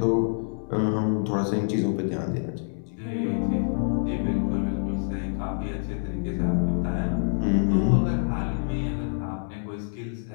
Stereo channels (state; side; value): silent; right; digital silence